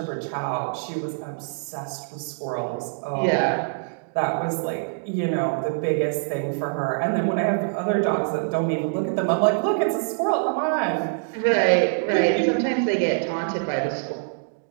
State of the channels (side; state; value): left; silent; digital silence